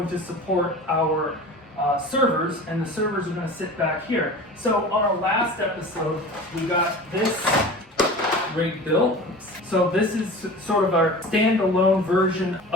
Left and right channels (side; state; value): both; normal; correlation 0.36